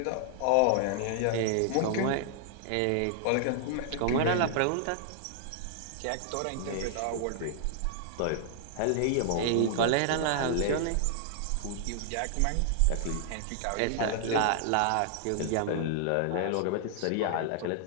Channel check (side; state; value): both; different; correlation -0.01